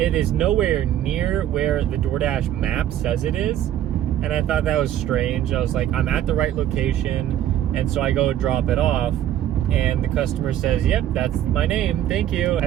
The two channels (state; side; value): quieter; left; 11.6 dB